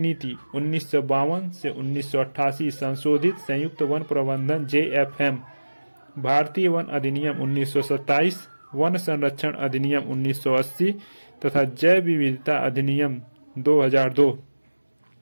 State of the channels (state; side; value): inverted; both; correlation -1.00